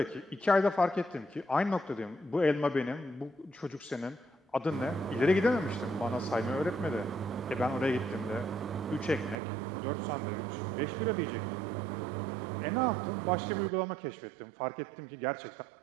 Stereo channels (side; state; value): left; drops out; at 9.3 s